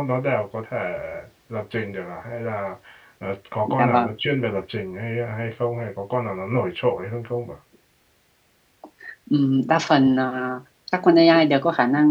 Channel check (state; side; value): identical; both; correlation 1.00